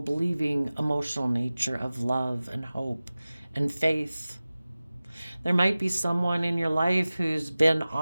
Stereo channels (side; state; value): both; inverted; correlation -0.97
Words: emotional nature of love and hope and faith. There might be someone in your life who's been